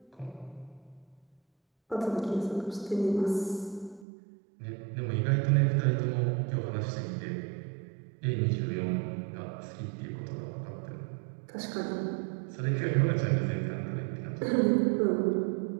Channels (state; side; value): drops out; left; at 4.0 s